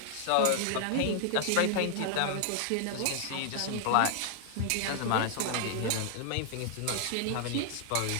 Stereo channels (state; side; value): different; both; correlation -0.01